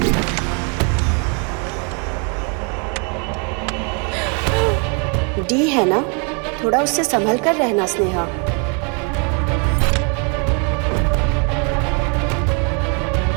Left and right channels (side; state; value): left; quieter; 36.5 dB